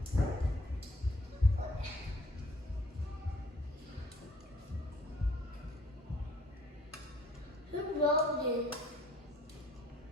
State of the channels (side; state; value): both; normal; correlation 0.59